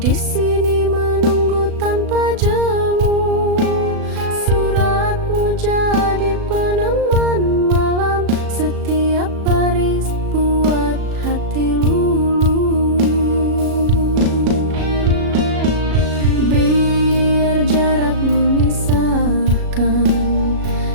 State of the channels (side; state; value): left; late; 37 ms